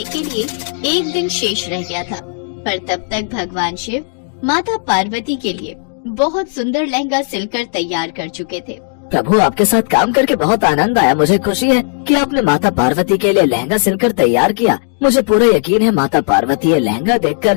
के लिए एक दिन शेष रह गया था, पर तब तक भगवान शिव माता पार्वती के लिए बहुत सुंदर लहंगा सिलकर तैयार कर चुके थे। प्रभु, आपके साथ काम करके बहुत आनंद आया। मुझे खुशी है कि आपने माता पार्वती के लिए लहंगा सिलकर तैयार किया। मुझे पूरा यकीन है माता पार्वती ये लहंगा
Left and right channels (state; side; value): silent; right; 66 dB below the other